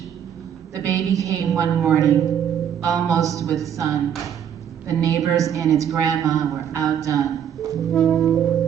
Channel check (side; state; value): left; quieter; 9.0 dB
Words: The baby came one morning, almost with sun. The neighbors and its grandma were outdone,